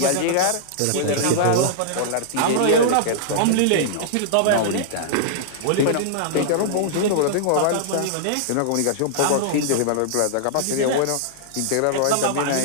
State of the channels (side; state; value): both; different; correlation -0.01